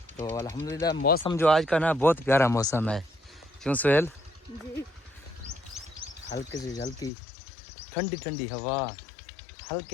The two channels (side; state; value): right; drops out; at 7.1 s